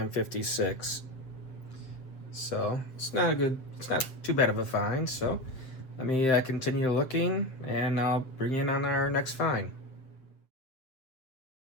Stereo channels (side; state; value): right; late; 7.8 ms